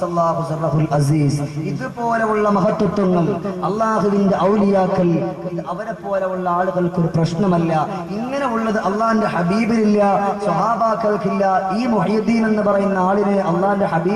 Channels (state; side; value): identical; both; correlation 1.00